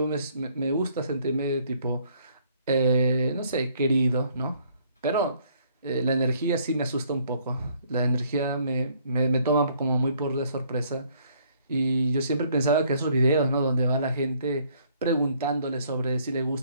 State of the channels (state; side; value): inverted; both; correlation -0.64